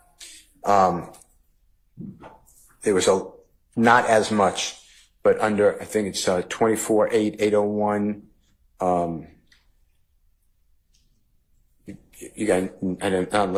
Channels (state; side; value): identical; both; correlation 1.00